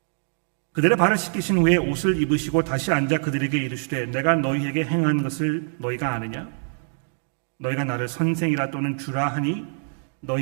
그들의 발을 씻기신 후에 옷을 입으시고 다시 앉아 그들에게 이르시되 내가 너희에게 행한 것을 너희가 아느냐? 너희가 나를 선생이라 또는 주라 하니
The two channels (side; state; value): left; silent; digital silence